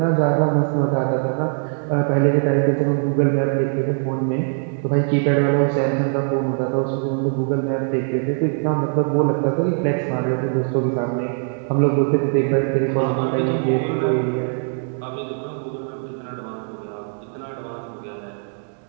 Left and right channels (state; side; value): silent; left; 55 dB below the other